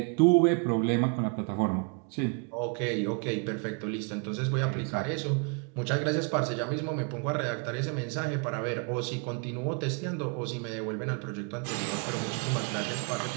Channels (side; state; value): left; quieter; 35.1 dB